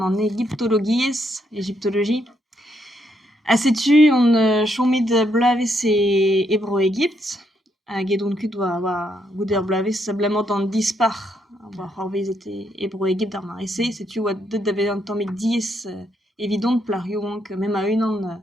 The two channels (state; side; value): normal; both; correlation 0.76